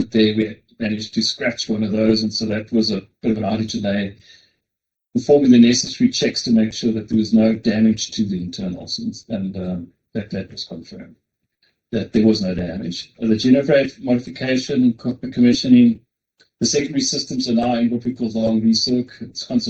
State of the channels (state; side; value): identical; both; correlation 1.00